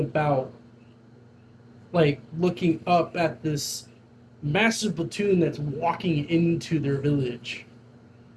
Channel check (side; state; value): both; identical; correlation 1.00